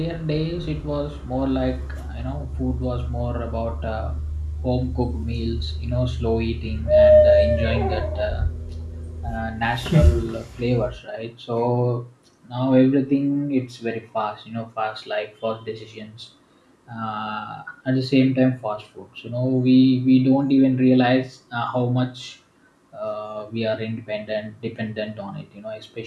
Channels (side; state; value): both; identical; correlation 1.00